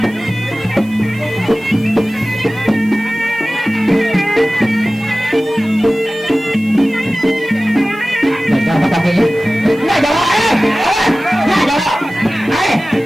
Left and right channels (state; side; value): noise; left; hiss, 26 dB below the sound